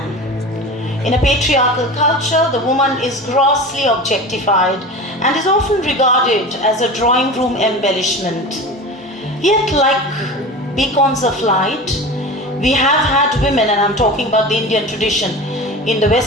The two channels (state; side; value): normal; both; correlation 0.32